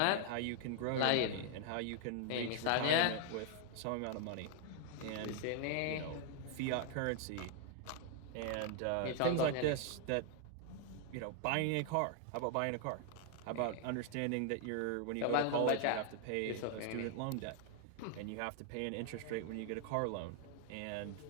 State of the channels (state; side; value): different; both; correlation 0.00